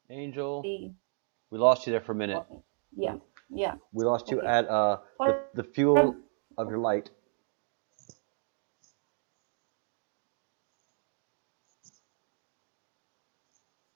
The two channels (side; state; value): left; silent; 56 dB below the other